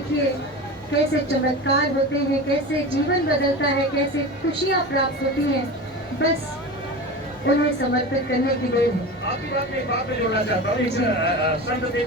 कैसे चमत्कार होते हैं, कैसे जीवन बदलता है, कैसे खुशियाँ प्राप्त होती हैं। बस उन्हें समर्पित करने की देर है। आपकी बात में एक बात मैं जोड़ना चाहता हूँ। एक संत थे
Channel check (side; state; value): both; normal; correlation 0.29